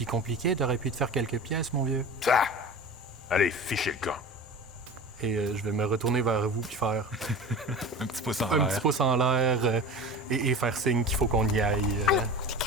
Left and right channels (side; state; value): both; normal; correlation 0.33